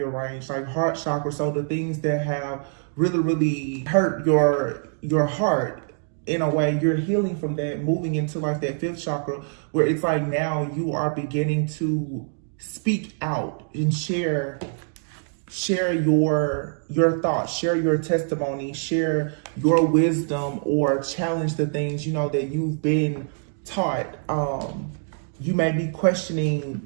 range, like heart chakra. So the things that have really hurt your heart, in a way, you're healing from that, moving into like that 5th chakra, where it's like now you are beginning to speak out and share your thoughts, share your testimony, share your wisdom, or challenge the things, you know, that you've been taught. You may be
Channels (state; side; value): silent; left; 62 dB below the other